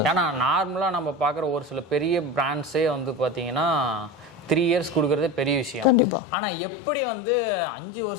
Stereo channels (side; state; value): right; drops out; at 6.0 s